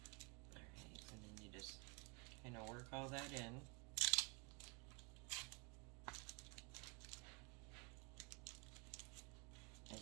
Alright, and then you just kind of work all that in. And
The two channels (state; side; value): quieter; left; 30.9 dB